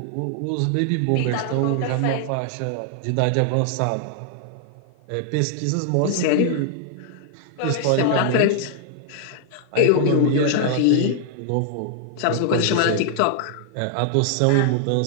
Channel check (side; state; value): both; different; correlation 0.00